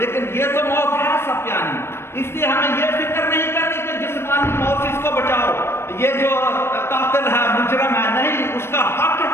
یہ تو موت ہے سب پیانی، اس لیے ہمیں یہ فکر نہیں کرنی کہ جسمانی موت سے اس کو بچاؤ، یہ جو قاتل ہے مجرم ہے، نہیں، اس کا حق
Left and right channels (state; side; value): late; right; 0.12 ms